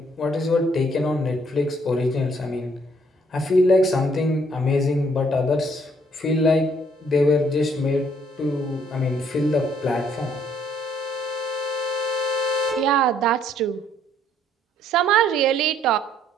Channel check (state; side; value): normal; both; correlation 0.65